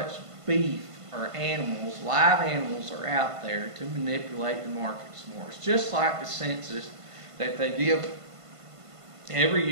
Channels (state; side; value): late; left; 1.5 ms